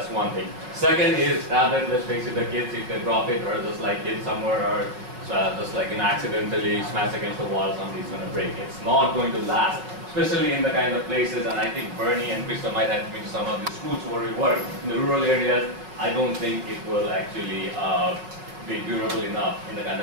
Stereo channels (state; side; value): late; left; 5.2 ms